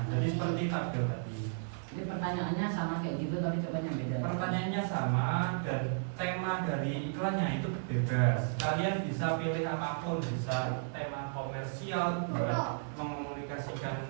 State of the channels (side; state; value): left; silent; digital silence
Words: Jadi seperti tabel tadi. Ini pertanyaannya sama kayak gitu tapi jawabannya beda. Pertanyaannya sama dan tema dari iklannya itu bebas. Kalian bisa pilih apapun, bisa tema komersial buat